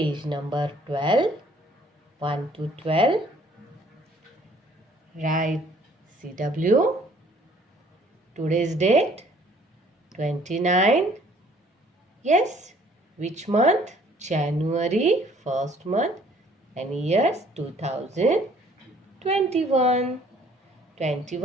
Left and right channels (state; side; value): normal; both; correlation 0.59